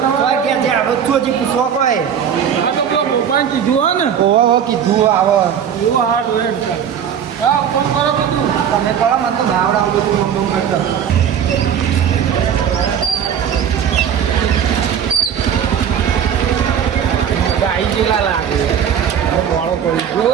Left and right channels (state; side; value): quieter; left; 8.4 dB